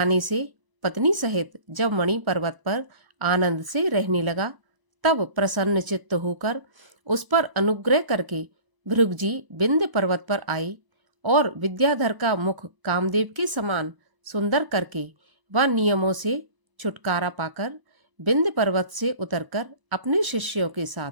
से पत्नी सहित जब मणि पर्वत पर आनंद से रहने लगा, तब प्रसन्न चित्त होकर उस पर अनुग्रह करके भृगु जी विंध्य पर्वत पर आए और विद्याधर का मुख कामदेव के समान सुंदर करके वह नियमों से छुटकारा पाकर विंध्य पर्वत से उतरकर अपने शिष्यों के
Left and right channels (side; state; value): left; late; 1.0 ms